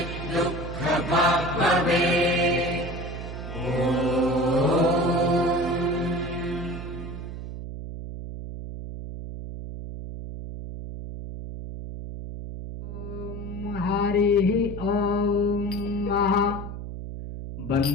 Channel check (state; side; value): noise; right; hum, 8 dB below the sound